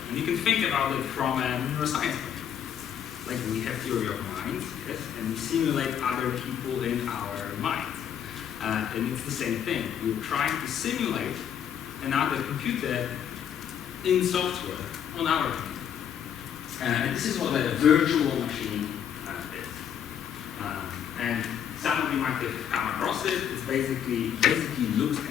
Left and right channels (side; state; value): right; quieter; 9.0 dB